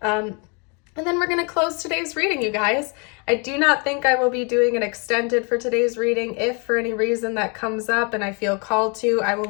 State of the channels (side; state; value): right; quieter; 34.1 dB